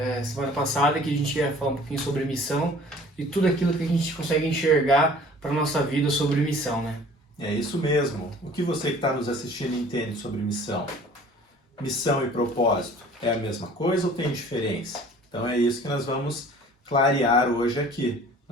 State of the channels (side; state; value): both; normal; correlation 0.49